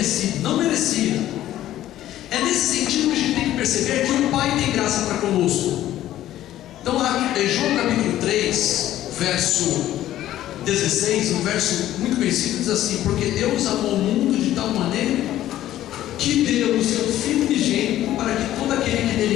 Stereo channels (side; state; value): right; quieter; 13.3 dB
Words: não merecia. É nesse sentido que a gente tem que perceber que o Pai tem graça para conosco. Então, em João capítulo 3, verso 16, um verso muito conhecido, diz assim: porque Deus amou o mundo de tal maneira que deu o seu Filho unigênito, para que todo aquele que